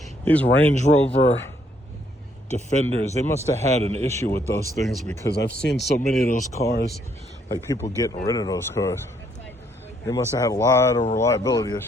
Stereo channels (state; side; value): normal; both; correlation 0.70